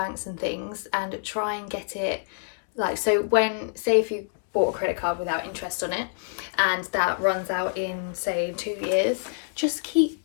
and things and try and get it, like, so when, say if you bought a credit card without interest on it and that runs out in say 2 years, just keep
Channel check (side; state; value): right; silent; 61 dB below the other